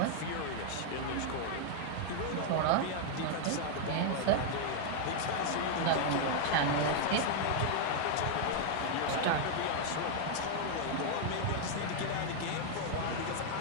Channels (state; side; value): different; both; correlation 0.00